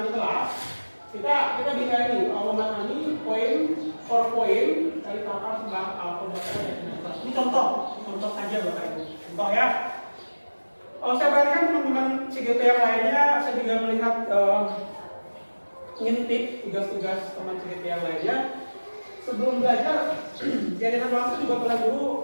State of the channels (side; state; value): both; inverted; correlation -1.00